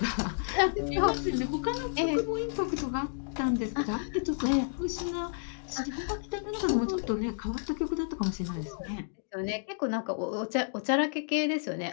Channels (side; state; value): right; silent; digital silence